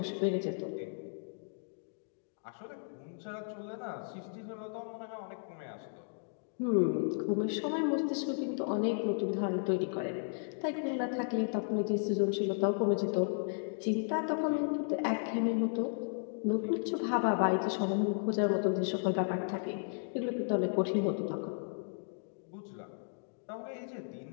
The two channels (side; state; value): right; silent; digital silence